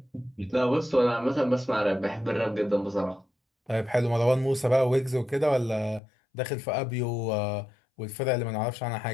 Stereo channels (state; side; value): drops out; right; at 6.0 s